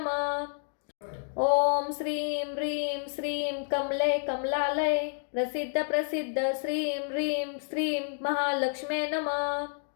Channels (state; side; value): silent; right; digital silence